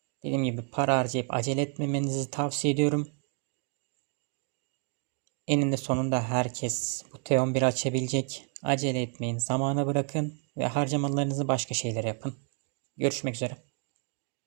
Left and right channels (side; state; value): left; quieter; 39.8 dB